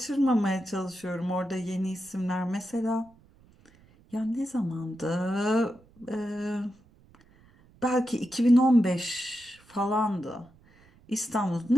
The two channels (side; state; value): right; noise; rumble, 28 dB below the sound